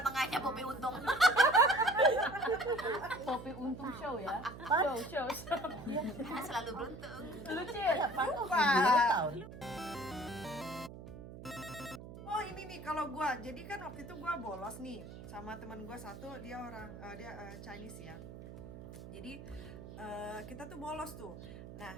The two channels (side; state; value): right; noise; hum, 13 dB below the sound